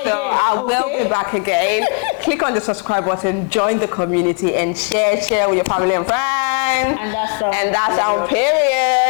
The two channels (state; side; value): quieter; right; 36.2 dB